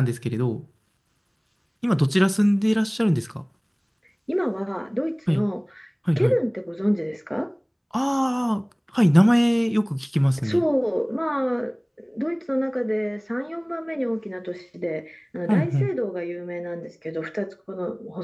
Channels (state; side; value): identical; both; correlation 1.00